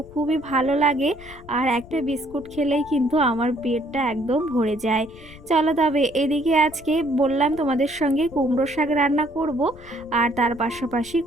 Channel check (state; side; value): noise; left; rumble, 19 dB below the sound